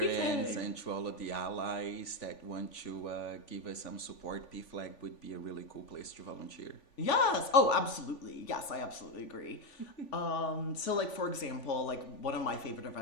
parents PFLAG. and to all of the allies that want to give us some support. PFLAG would be a really cool place to volunteer. Yes. Oh, absolutely. Yes, I absolutely agree. So like for example, like one of my favorite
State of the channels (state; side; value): late; right; 3.5 ms